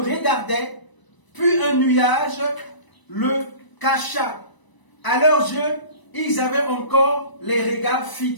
regardait, puis un nuage le cacha. À leurs yeux, ils avaient encore les regards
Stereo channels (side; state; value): right; late; 1.0 ms